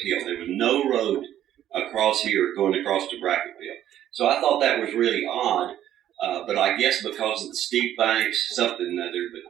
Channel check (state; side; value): quieter; left; 11.6 dB